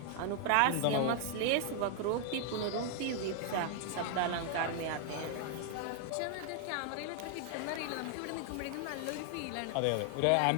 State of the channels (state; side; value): different; both; correlation 0.00